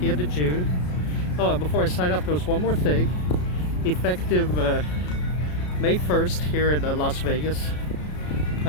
end of June. Oh, and before I sign off, there was one more thing. Effective May 1st here in Las Vegas,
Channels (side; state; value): right; late; 33 ms